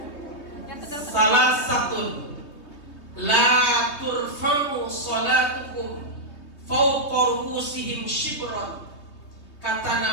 Salah satu, la turfa'u salatukum fawqa ru'usihim shibran. Kata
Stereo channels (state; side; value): late; right; 3.2 ms